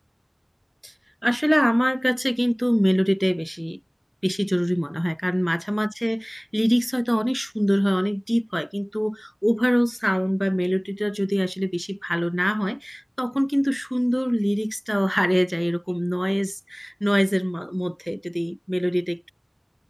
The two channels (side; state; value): both; identical; correlation 1.00